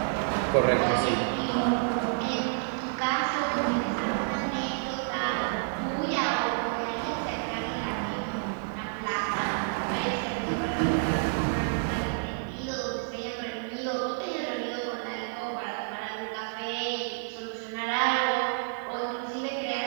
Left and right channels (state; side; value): silent; left; digital silence